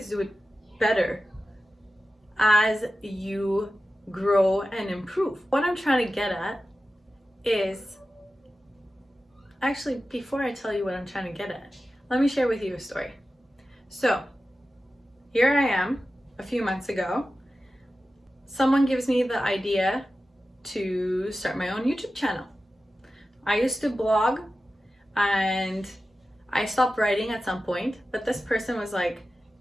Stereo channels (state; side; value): normal; both; correlation 0.94